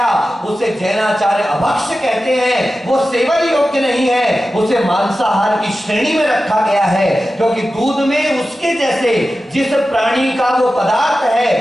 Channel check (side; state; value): both; normal; correlation 0.93